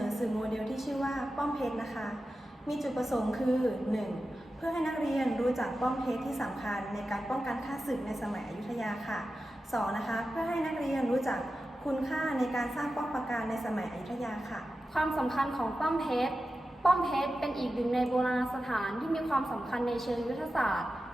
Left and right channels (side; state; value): both; normal; correlation 0.92